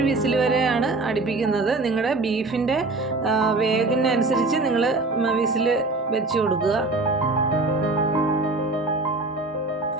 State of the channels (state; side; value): quieter; left; 3.3 dB